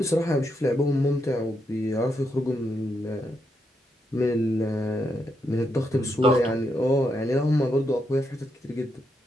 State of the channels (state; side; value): normal; both; correlation 0.81